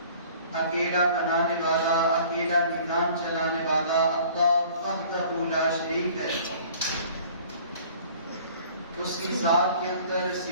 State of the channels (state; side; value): inverted; both; correlation -0.50